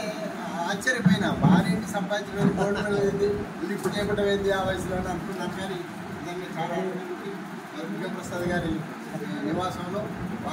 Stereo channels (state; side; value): identical; both; correlation 1.00